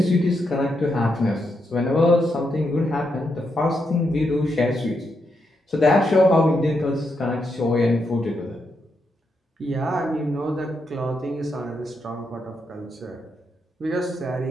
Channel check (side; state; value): both; normal; correlation 0.82